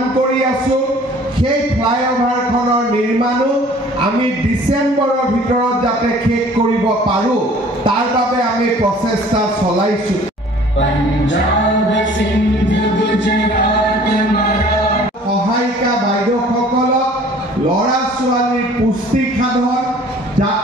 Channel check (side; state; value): both; normal; correlation 0.51